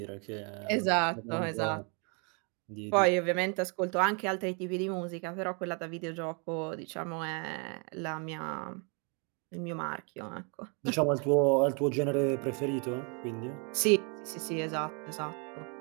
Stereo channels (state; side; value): quieter; left; 35.9 dB